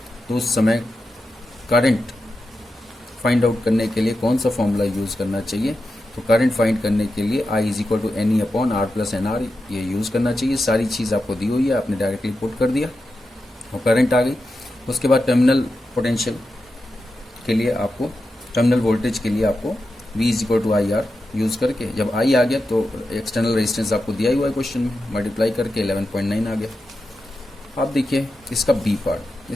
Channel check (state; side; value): normal; both; correlation 0.89